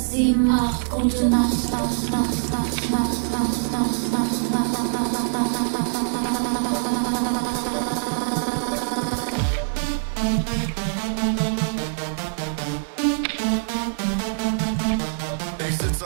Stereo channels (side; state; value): left; silent; digital silence